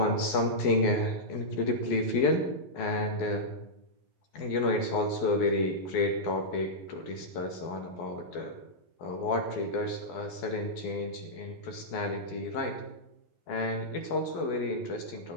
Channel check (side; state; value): right; late; 12 ms